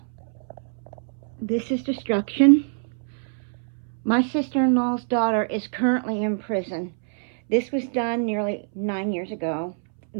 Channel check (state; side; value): silent; left; 60 dB below the other